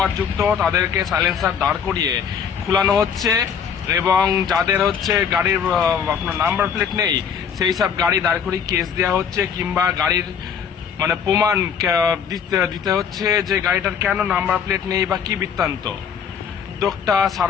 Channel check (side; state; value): right; quieter; 7.4 dB